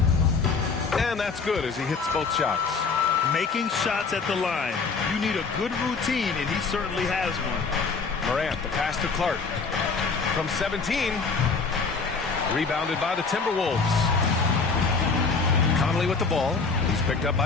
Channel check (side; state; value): right; quieter; 4.7 dB